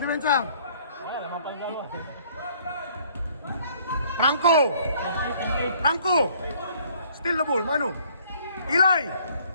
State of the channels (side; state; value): both; inverted; correlation -0.60